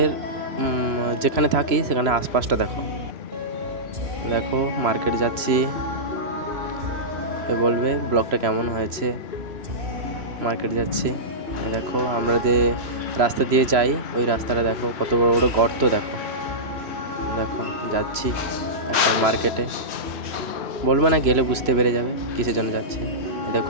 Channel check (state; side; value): late; left; 3.0 ms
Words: যেখানে থাকি সেখানে আশপাশটা দেখো। দেখো মার্কেট যাচ্ছি, বলবে ব্লগটা কেমন হয়েছে। মার্কেট যাচ্ছি, দেখো আমরা যে রাস্তা দিয়ে যাই ওই রাস্তাটা দেখো, কত বড় বড় গর্ত দেখো। দেখো যাচ্ছি এখন মার্কেটে, বলবো না, গেলে বুঝতে পেরে যাবে কিসের জন্য যাচ্ছি।